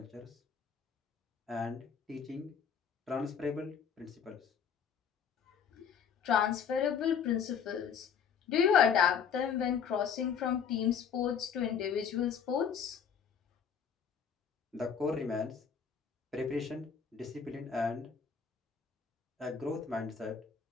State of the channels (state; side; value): quieter; right; 7.0 dB